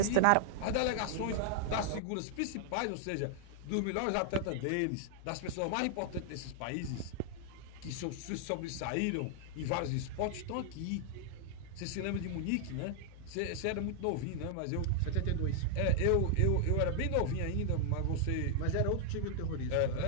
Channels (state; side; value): different; both; correlation 0.00